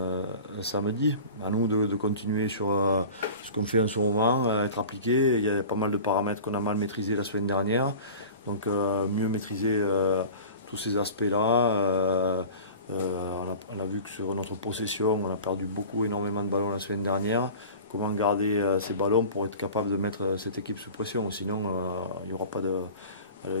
samedi. À nous de continuer sur ce qu'on fait en ce moment, être appliqué. Il y a pas mal de paramètres qu'on a mal maîtrisés la semaine dernière. Donc mieux maîtriser tous ces aspects-là. On a vu que sur notre possession, on a perdu énormément de ballons la semaine dernière. Comment garder ces ballons pour être capable de mettre cette équipe sous pression. Sinon, il n'y aura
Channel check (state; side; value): inverted; both; correlation -0.39